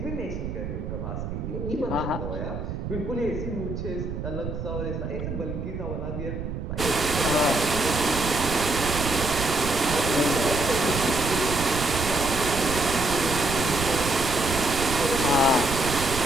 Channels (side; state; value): right; noise; rumble, 5 dB below the sound